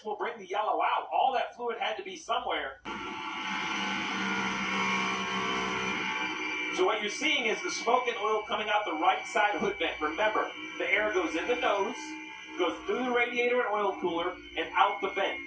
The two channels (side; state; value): both; identical; correlation 1.00